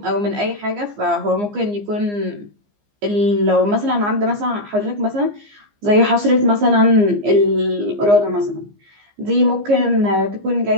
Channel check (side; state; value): left; late; 15 ms